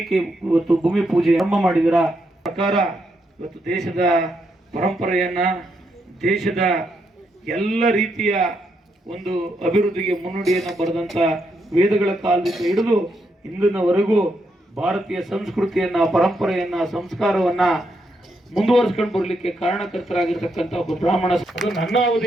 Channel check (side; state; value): both; normal; correlation 0.80